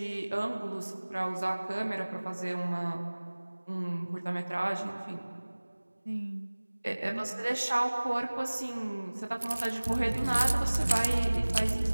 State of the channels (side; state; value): both; inverted; correlation -1.00